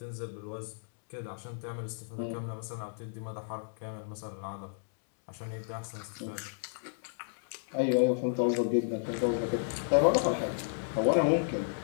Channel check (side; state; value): right; silent; digital silence